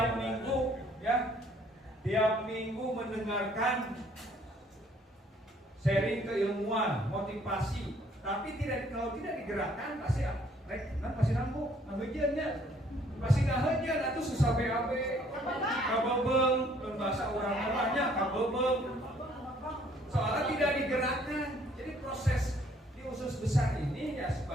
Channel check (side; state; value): both; normal; correlation 0.62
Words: tiap minggu mendengarkan sharing keilmuan, motivasi, tapi kalau tidak digerakkan pasti pasti nanggung, ngahejeunnya. Pasti ngahejeun atuh susah BAB, kabebeng, dan bahasa orang orangnya kabebeng. Soalnya tidak digerakkan. Jadi proses di usus besar ini ya